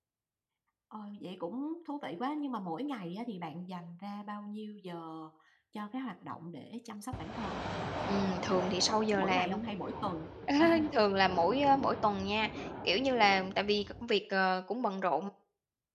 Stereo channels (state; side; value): identical; both; correlation 1.00